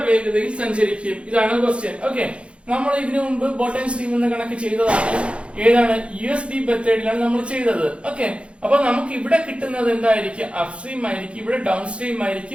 വേഗതയിൽ സഞ്ചരിക്കും? ഇതാണ് ക്വസ്റ്റ്യൻ. ഓക്കെ, നമ്മൾ ഇതിനു മുമ്പ് ബോട്ട് ആൻഡ് സ്ട്രീം എന്ന കണക്ക് ചെയ്തതാണ്. ഏതാണ്? USD മെത്തേഡിലാണ് നമ്മൾ ചെയ്തത്. ഓക്കെ, അപ്പൊ നമുക്ക് ഇവിടെ കിട്ടുന്നത് എന്തായിരിക്കും? അപ് സ്ട്രീം ആയിരിക്കും, ഇവിടെ ഡൗൺ സ്ട്രീം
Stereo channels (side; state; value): left; late; 0.059 ms